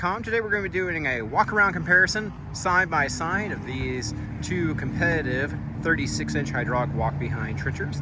Today we're going to be doing a walk-around comparison side by side of these two competitive 36-inch hydraulic walk-behind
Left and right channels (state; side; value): identical; both; correlation 1.00